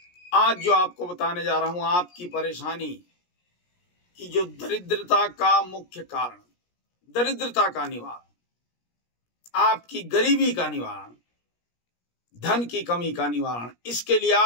आज जो आपको बताने जा रहा हूं, आपकी परेशानी की जो दरिद्रता का मुख्य कारण, दरिद्रता का निवारण, आपकी गरीबी का निवारण, धन की कमी का निवारण, इसके लिए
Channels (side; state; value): right; late; 17 ms